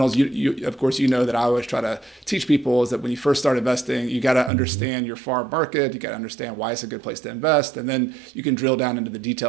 You of course, that I always try to teach people is that when you first start investing, you got to understand your farm market. You got to understand why it's a good place to invest, and then you can drill down into the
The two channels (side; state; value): left; drops out; at 4.5 s